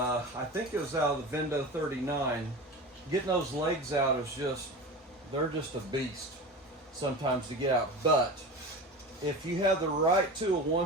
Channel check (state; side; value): normal; both; correlation 0.30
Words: think it was out of the Vendo 39. Getting those legs out is just, they're just a beast sometimes to get out. But if you have the right tool,